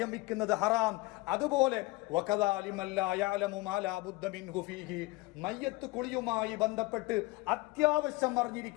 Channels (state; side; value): quieter; right; 22.8 dB